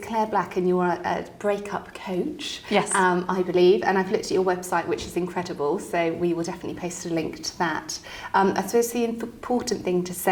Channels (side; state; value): both; identical; correlation 1.00